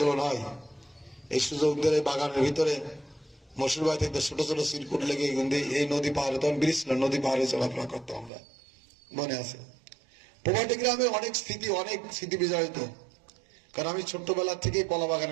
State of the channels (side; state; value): left; drops out; at 8.3 s